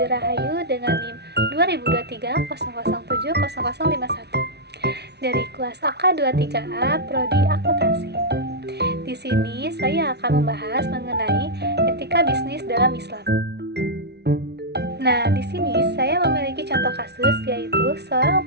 Rahayu dengan NIM 202300700051 dari kelas AK23A Prodi Akuntansi. Di sini saya akan membahas mengenai etika bisnis dalam Islam. Nah, di sini saya memiliki contoh kasus yaitu seorang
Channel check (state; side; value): late; left; 0.49 ms